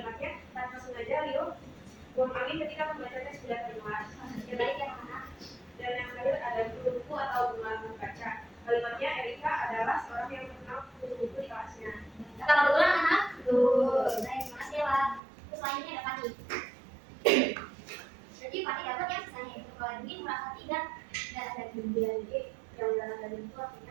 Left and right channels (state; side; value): drops out; left; at 15.2 s